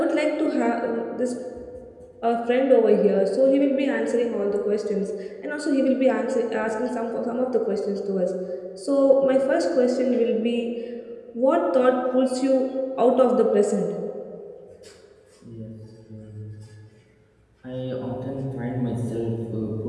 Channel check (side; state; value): both; identical; correlation 1.00